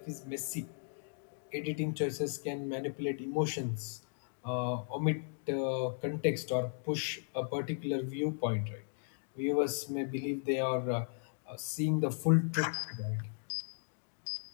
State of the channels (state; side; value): silent; right; digital silence